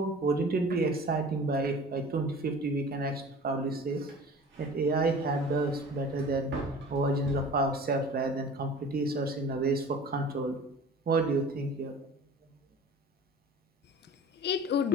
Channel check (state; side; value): normal; both; correlation 0.42